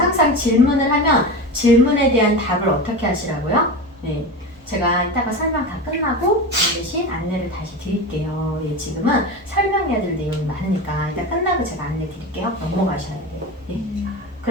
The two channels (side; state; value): both; normal; correlation 0.25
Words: 질문을 하면 질문에 대한 답을 어떻게 하시라고요? 네, 제가 이따가 설명 다 끝나고 대신 안내를 다시 드릴게요. 예, 지금은 설명해야 될 내용이 많으니까 이따 끝나고 제가 안내 드릴게요. 넘어가셔야 돼요. 예.